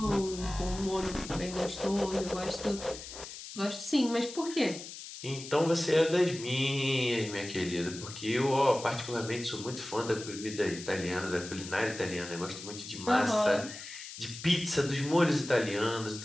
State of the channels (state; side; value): noise; left; hiss, 12 dB below the sound